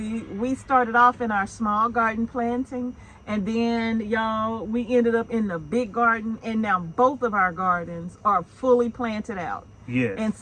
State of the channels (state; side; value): identical; both; correlation 1.00